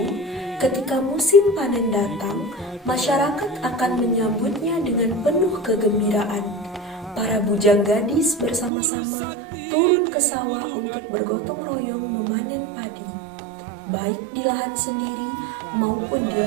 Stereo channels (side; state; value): left; drops out; at 8.7 s